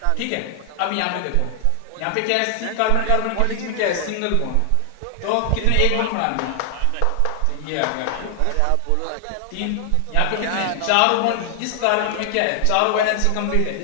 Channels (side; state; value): both; different; correlation 0.00